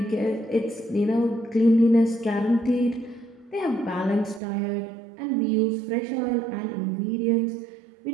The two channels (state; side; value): drops out; left; at 4.4 s